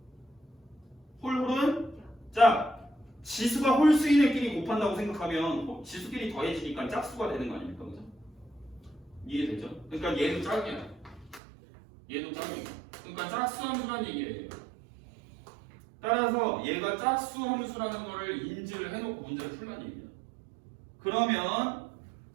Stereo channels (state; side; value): drops out; left; at 11.4 s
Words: 짝. 지수가 홀수인 애끼리 곱한다고 생각하면 지수끼리 더해지니까 짝수가 되는 거 아닙니까? 그죠? 이해되죠? 그러니까 얘도 짝이야. 얘도 짝이야. 그러니까 짝수 함수란 얘기예요. 따라서 얘가 짝수 함수라는 거를 인지를 해놓고 문제를 풀란 얘기야. 그러면